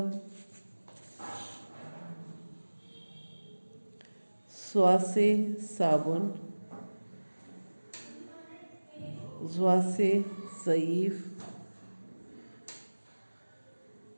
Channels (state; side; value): inverted; both; correlation -1.00